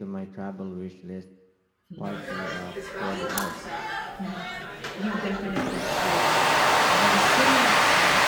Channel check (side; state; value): both; identical; correlation 1.00